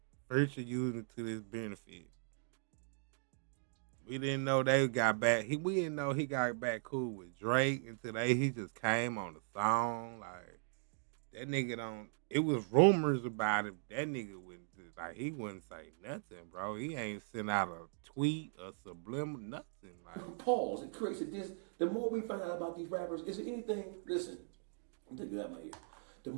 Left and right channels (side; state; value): left; silent; digital silence